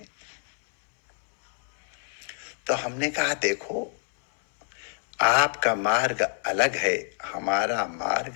तो हमने कहा देखो, आपका मार्ग अलग है, हमारा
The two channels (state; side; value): silent; right; 61 dB below the other